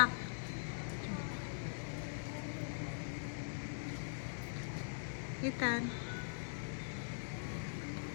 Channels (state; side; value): silent; right; digital silence